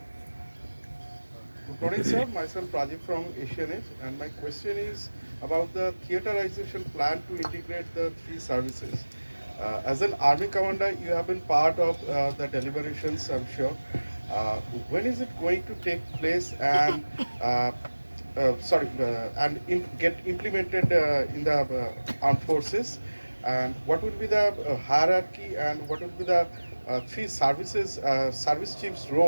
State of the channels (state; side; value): inverted; both; correlation -1.00